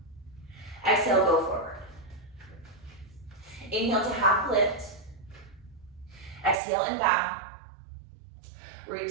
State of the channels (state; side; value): drops out; left; at 6.6 s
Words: Exhale, go forward. Inhale to half lift. Exhale and bow. Root